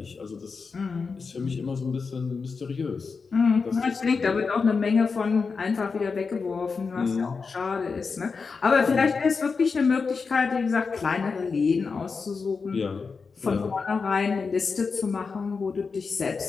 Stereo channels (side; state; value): right; quieter; 4.9 dB